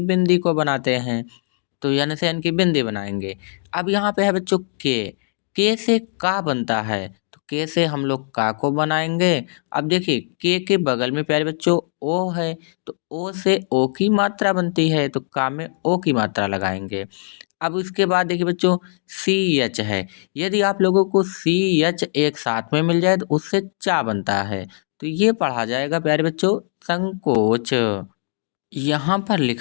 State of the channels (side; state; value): right; silent; 65 dB below the other